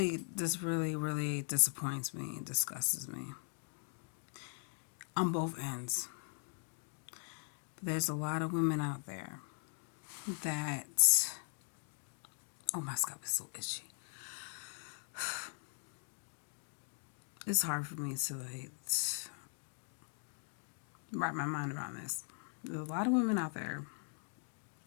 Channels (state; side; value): silent; right; 51 dB below the other